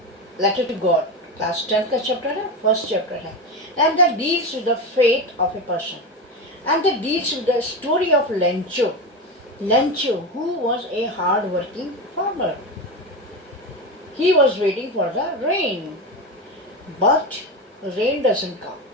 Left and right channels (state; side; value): normal; both; correlation 0.19